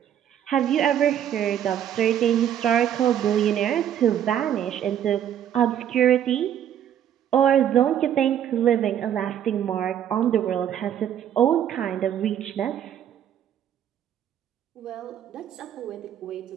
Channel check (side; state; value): left; quieter; 10.0 dB